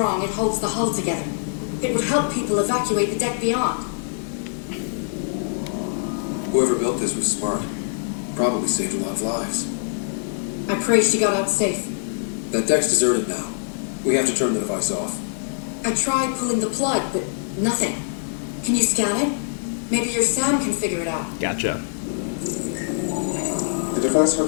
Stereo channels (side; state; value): right; silent; digital silence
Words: it holds the hull together. It would help people evacuate the deck beyond. Whoever built this was smart. Probably saved a lot of lives. I pray she got out safe. That deck's deserted now. We have to turn the device off. I tried pulling the plug, but nothing. Can you scan it? Maybe your Sam can figure it out. Gotcha. The device